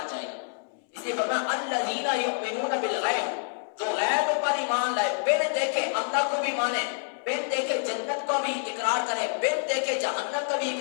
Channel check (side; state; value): right; silent; 60 dB below the other